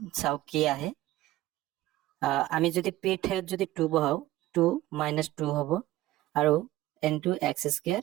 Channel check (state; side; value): quieter; left; 16.3 dB